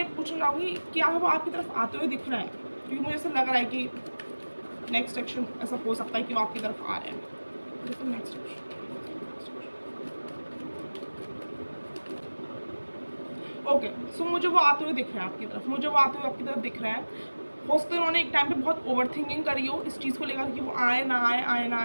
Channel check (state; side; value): inverted; both; correlation -1.00